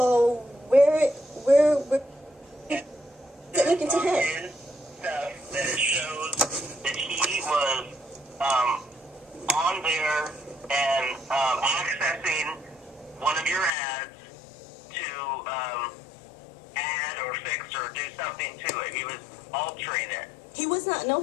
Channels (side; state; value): right; drops out; at 13.7 s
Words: we're looking to him. His stuff that it shows that he was on there and accessing one of your ads to add or fix or do something to it. He was altering it. He was not. No,